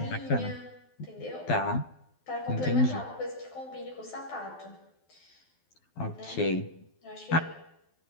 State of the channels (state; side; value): late; right; 12 ms